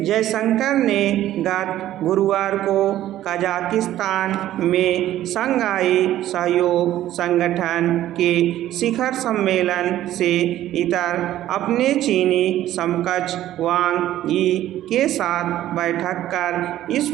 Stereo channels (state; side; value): quieter; left; 13.3 dB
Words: ने गत गुरुवार को कजाकिस्तान में शंघाई सहयोग संगठन के शिखर सम्मेलन से इतर अपने चीनी समकक्ष वांग यी के साथ बैठक कर इस